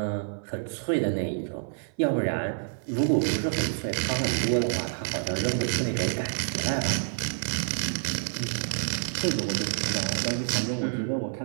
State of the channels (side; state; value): left; silent; 56 dB below the other